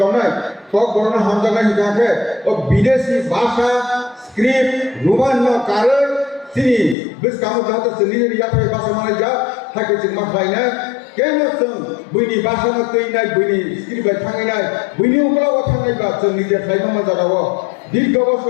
বানায় কক বর্ণ হামজানা হিকাকে ও বিদেশি ভাষা স্ক্রিপ্ট রোমান্য কারণ তিনি বেশ কাম যাতে নিজের ইয়াতে ভাষা মানে যা থাকে যে মাথায় নাই কেন বইনি ভাষা না তৈ নাই বইনি স্ক্রিপ্ট থাঙে নাই বইনি ওগুলো থাঙাই বা নিজের খাইবা মজা দাও দীর্ঘ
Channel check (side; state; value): right; drops out; at 7.0 s